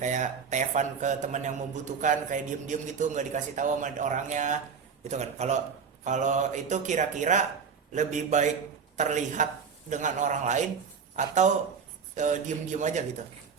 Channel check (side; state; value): left; quieter; 6.1 dB